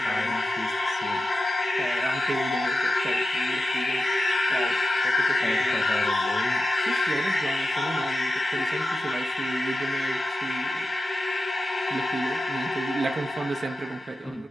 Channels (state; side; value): normal; both; correlation 0.91